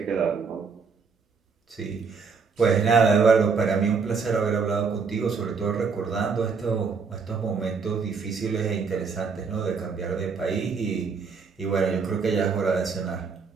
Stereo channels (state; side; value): quieter; left; 5.3 dB